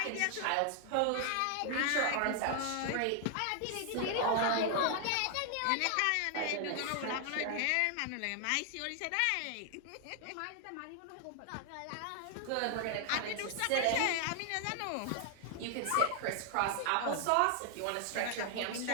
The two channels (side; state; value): both; different; correlation 0.00